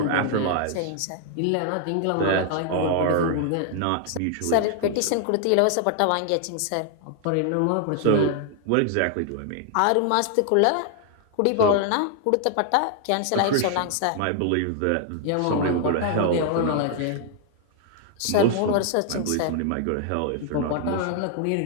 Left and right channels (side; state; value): both; different; correlation 0.00